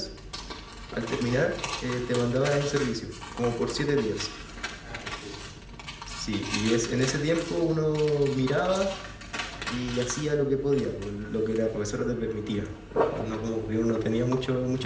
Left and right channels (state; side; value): identical; both; correlation 1.00